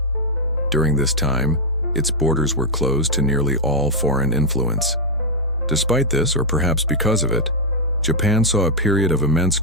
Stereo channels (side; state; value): both; normal; correlation -0.01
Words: During this time, its borders were closed to nearly all foreign influence. Despite this, or perhaps because of it, Japan saw a period of immense